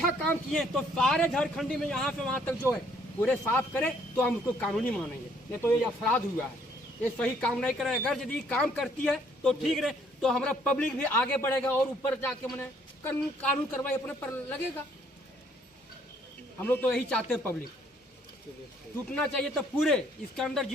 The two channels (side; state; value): both; normal; correlation 0.65